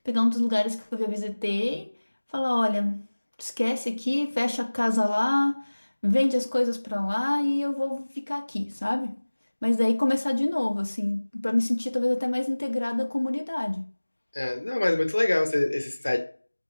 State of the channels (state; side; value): inverted; both; correlation -1.00